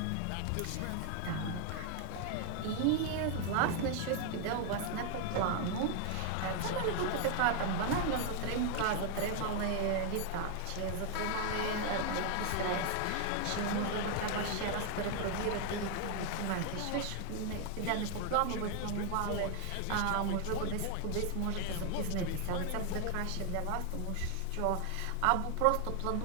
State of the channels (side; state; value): both; different; correlation 0.00